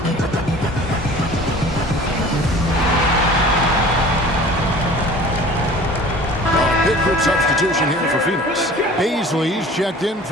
group substitution here for Phoenix. Baisley's checked in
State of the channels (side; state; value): both; normal; correlation 0.44